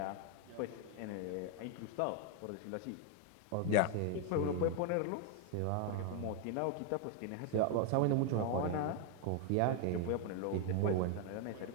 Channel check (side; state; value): both; different; correlation 0.01